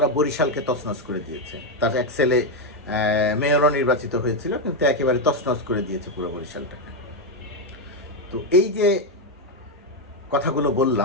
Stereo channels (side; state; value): both; normal; correlation 0.06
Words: বরিশালকে তছনছ করে দিয়েছে। তার এক ছেলে মেয়রও নির্বাচিত হয়েছিল, কিন্তু একেবারে তছনছ করে দিয়েছে পুরো বরিশালটাকে। তো এই যে কথাগুলো